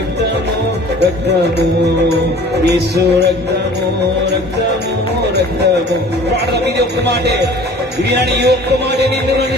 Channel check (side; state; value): both; normal; correlation 0.47